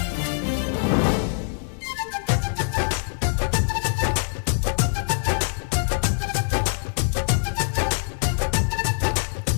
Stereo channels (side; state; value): right; silent; 63 dB below the other